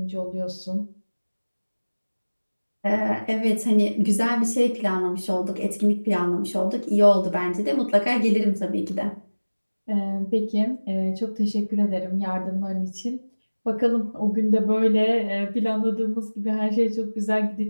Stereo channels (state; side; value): inverted; both; correlation -1.00